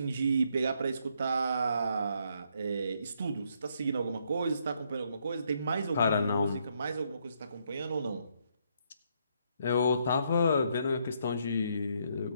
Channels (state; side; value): inverted; both; correlation -0.73